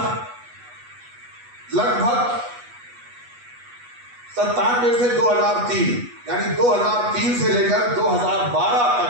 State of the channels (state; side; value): late; left; 8.2 ms